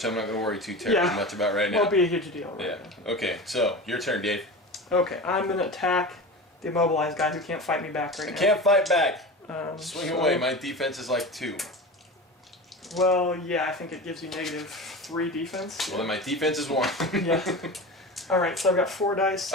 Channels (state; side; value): normal; both; correlation 0.29